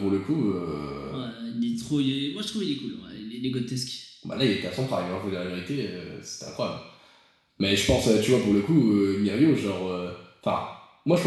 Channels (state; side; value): identical; both; correlation 1.00